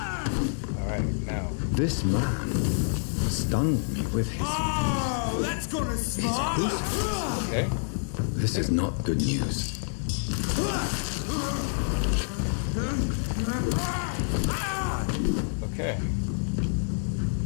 Alright, now. This man stunned me with his... Oh, that's gonna smart! Okay. This is not good news. Okay.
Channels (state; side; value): silent; right; digital silence